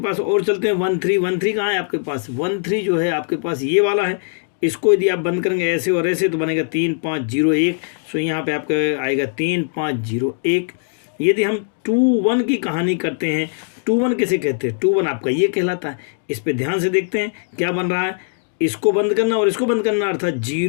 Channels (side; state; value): right; silent; 63 dB below the other